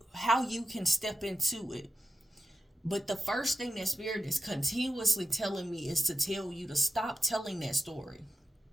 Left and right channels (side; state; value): both; normal; correlation 0.91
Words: how you can step into it. But the first thing that Spirit is continuously telling me is to tell you to stop telling that story.